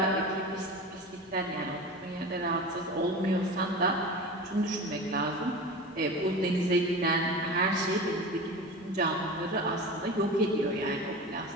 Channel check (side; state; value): both; normal; correlation 0.31